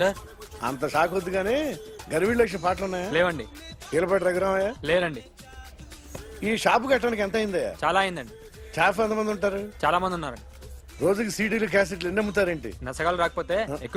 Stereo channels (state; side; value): identical; both; correlation 1.00